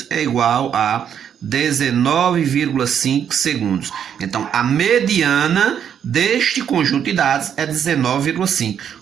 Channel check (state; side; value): quieter; left; 8.6 dB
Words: é igual a 19,5 segundos. Então, a mediana deste conjunto de dados é 19,5.